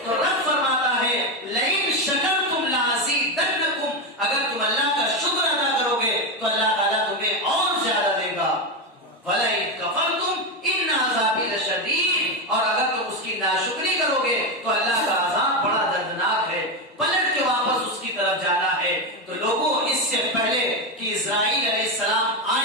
تو رب فرماتا ہے لئن شکرتم لازیدنکم، اگر تم اللہ کا شکر ادا کرو گے تو اللہ تعالیٰ تمہیں اور زیادہ دے گا. وَلَئِن كَفَرْتُمْ إِنَّ عَذَابِي لَشَدِيدٌ، اور اگر تم اس کی ناشکری کرو گے تو اللہ کا عذاب بڑا دردناک ہے. پلٹ کے واپس اس کی طرف جانا ہے. تو لوگوں اس سے پہلے کہ اسرائیل علیہ السلام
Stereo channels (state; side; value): normal; both; correlation 0.11